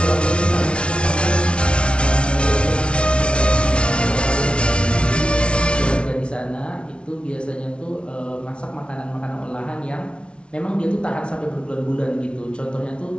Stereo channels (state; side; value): late; right; 0.058 ms